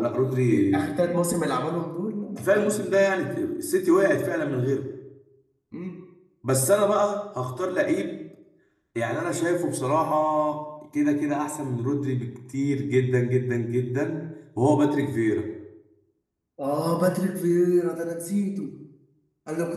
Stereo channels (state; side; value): identical; both; correlation 1.00